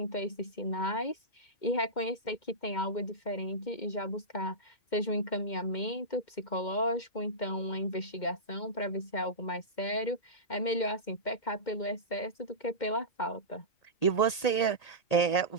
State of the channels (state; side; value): late; right; 1.8 ms